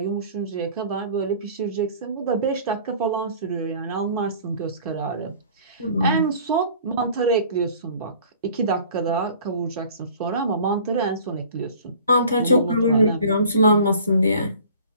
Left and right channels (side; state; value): both; inverted; correlation -0.48